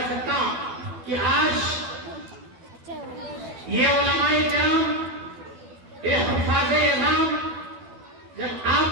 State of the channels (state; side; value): late; left; 12 ms